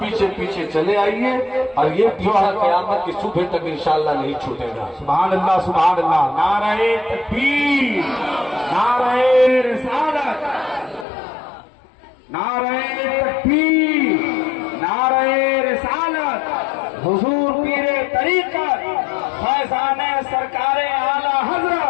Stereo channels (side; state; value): right; drops out; at 11.1 s